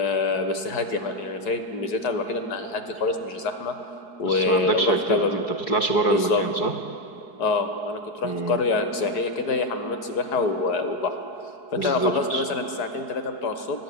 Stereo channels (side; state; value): right; late; 4.7 ms